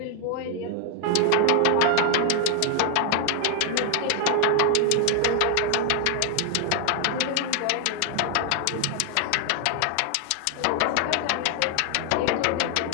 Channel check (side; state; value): both; different; correlation 0.00